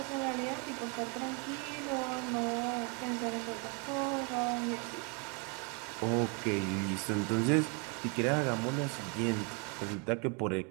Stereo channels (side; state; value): left; quieter; 34.2 dB